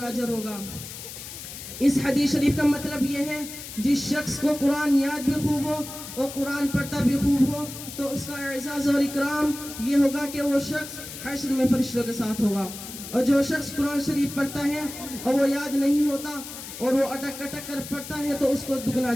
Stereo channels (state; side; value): noise; left; hiss, 11 dB below the sound